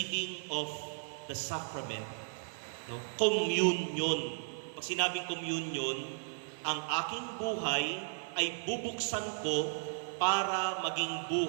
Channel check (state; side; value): silent; left; 54 dB below the other